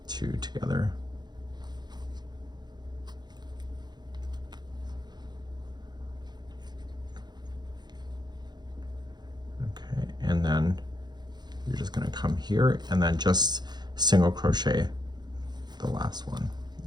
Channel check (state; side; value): late; left; 0.21 ms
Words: 2 together, okay, and then you're just going to come here and then just single crochet the last one.